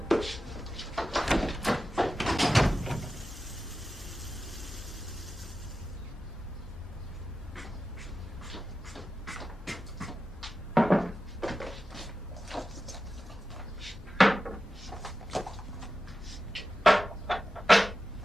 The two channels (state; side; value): normal; both; correlation 0.93